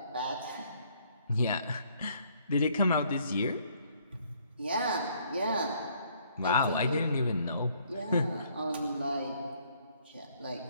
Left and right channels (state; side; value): inverted; both; correlation -0.65